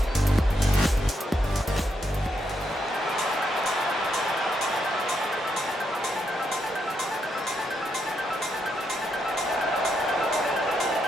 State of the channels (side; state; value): both; normal; correlation 0.79